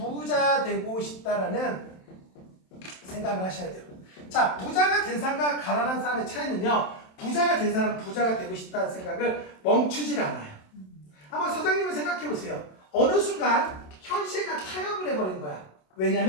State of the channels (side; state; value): right; late; 27 ms